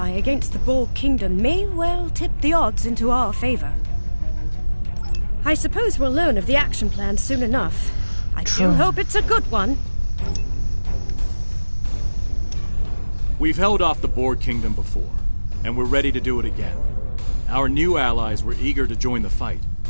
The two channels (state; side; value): inverted; both; correlation -1.00